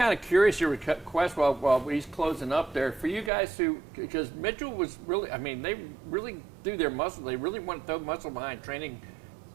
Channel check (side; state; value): left; drops out; at 3.3 s